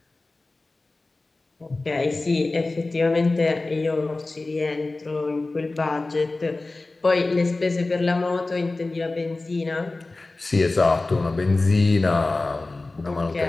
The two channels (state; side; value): quieter; right; 3.2 dB